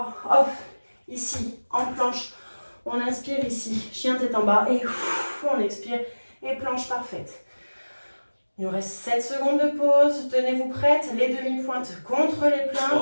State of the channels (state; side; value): inverted; both; correlation -1.00